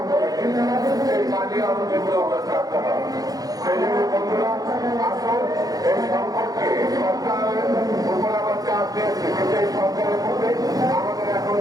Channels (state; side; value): late; left; 0.18 ms